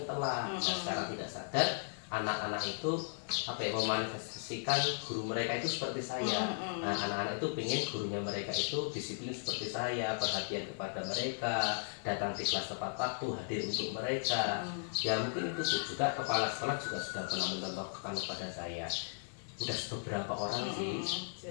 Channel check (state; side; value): silent; right; 54 dB below the other